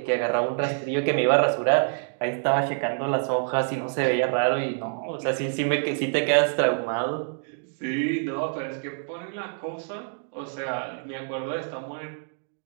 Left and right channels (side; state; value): left; silent; 61 dB below the other